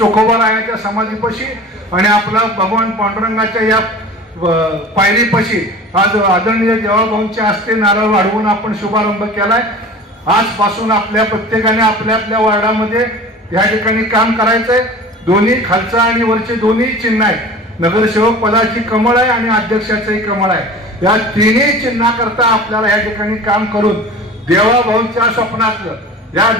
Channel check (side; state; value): both; normal; correlation 0.39